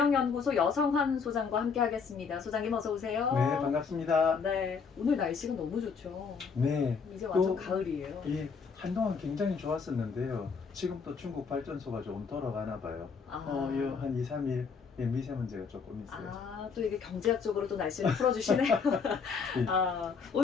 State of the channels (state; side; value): quieter; right; 5.6 dB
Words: 여성환 소장과 함께하겠습니다. 소장님 어서 오세요. 네, 반갑습니다. 네, 오늘 날씨가 너무 좋죠. 네, 이제 완전 또, 가을이에요. 예, 한동안 굉장히 좋았었는데요. 지금 또 중국 발전소가 조금 돌아가나 봐요. 한 2, 3일 미세먼지가 조금 있어요. 또 이게 경제학적으로 또 날씨를 풀어주시네요.